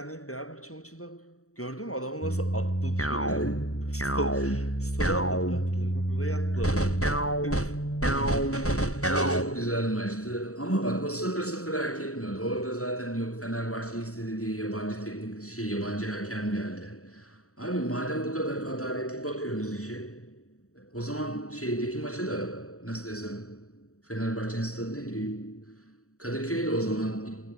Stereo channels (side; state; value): right; late; 0.65 ms